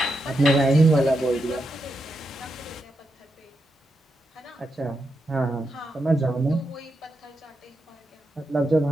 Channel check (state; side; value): normal; both; correlation 0.85